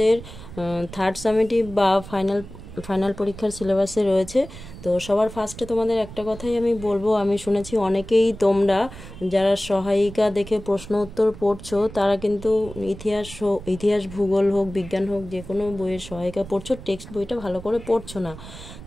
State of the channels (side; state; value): right; noise; rumble, 15 dB below the sound